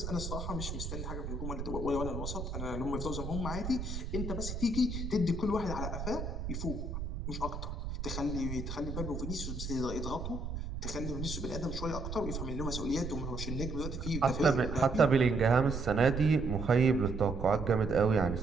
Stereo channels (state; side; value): noise; right; rumble, 5 dB below the sound